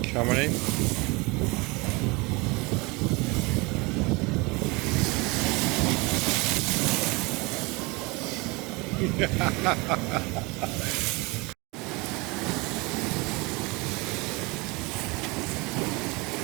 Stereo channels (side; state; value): left; quieter; 26.0 dB